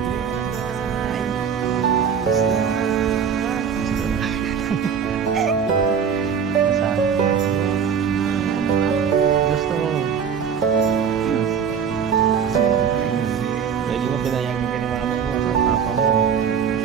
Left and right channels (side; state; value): left; quieter; 7.2 dB